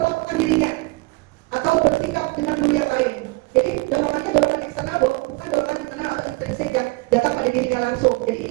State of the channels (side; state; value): left; quieter; 25.6 dB